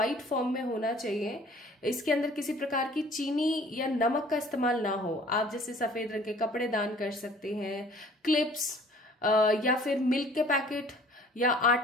फॉर्म में होना चाहिए। इसके अंदर किसी प्रकार की चीनी या नमक का इस्तेमाल ना हो। आप जैसे सफेद रंग के कपड़े दान कर सकते हैं, क्लिप्स, या फिर मिल्क के पैकेट, या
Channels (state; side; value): normal; both; correlation 0.52